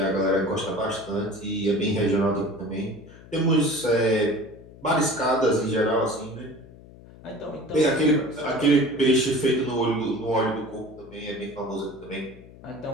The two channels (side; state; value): left; noise; hum, 20 dB below the sound